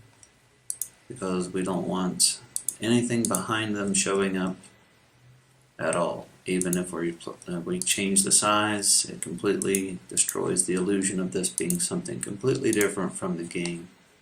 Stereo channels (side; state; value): both; identical; correlation 1.00